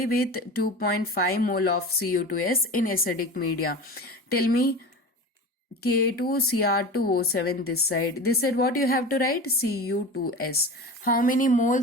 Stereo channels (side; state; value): both; normal; correlation 0.31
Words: with 2.5 mole of Cu2S in acidic media? Tell me. K2Cr2O7 this side. This side what you have to write? Cu2S. How many